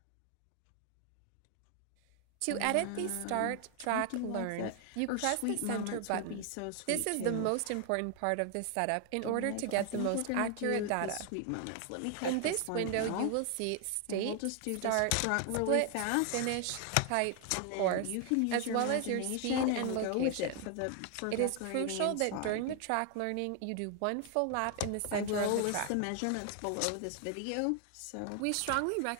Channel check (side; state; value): both; different; correlation 0.00